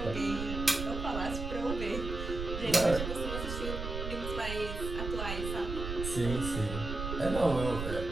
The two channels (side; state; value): right; noise; rumble, 5 dB below the sound